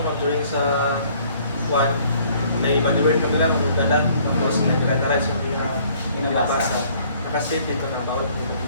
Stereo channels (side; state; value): both; inverted; correlation -0.59